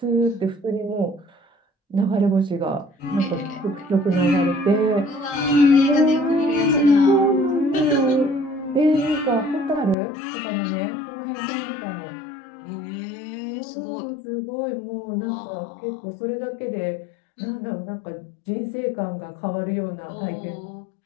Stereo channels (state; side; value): drops out; right; at 10.0 s